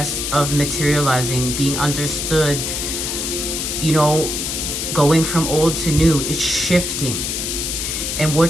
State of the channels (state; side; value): noise; left; hiss, 2 dB below the sound